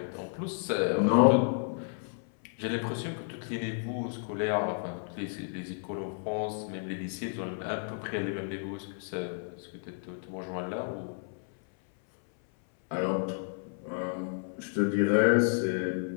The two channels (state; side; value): silent; right; 57 dB below the other